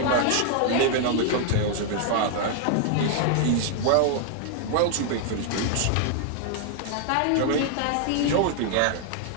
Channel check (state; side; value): different; both; correlation 0.00